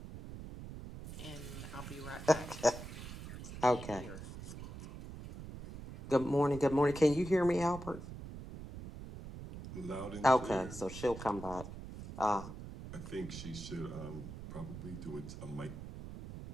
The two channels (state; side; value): noise; right; rumble, 11 dB below the sound